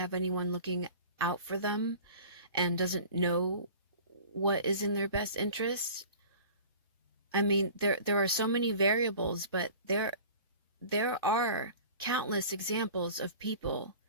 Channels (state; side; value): inverted; both; correlation -0.42